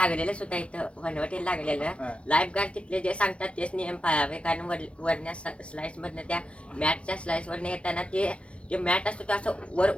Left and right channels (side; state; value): right; late; 0.060 ms